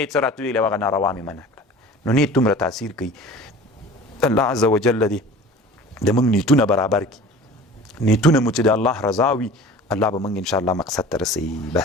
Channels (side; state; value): both; normal; correlation 0.41